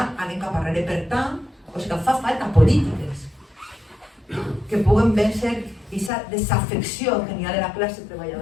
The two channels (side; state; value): right; drops out; at 6.1 s